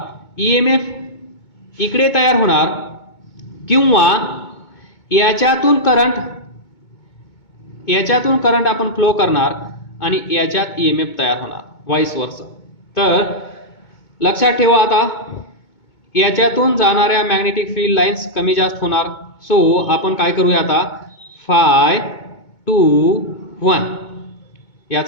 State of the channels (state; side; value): late; right; 2.2 ms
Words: EMF इकडे तयार होणार, किंवा याच्यातून करंट आपण फ्लो करणार आणि याच्यात EMF तयार होणार, व्हाईस वर्सा. तर लक्षात ठेवा, आता याच्यातून जाणाऱ्या मॅग्नेटिक फील्ड लाईन्स कमी जास्त होणार. सो आपण काय करूया आता, Φ2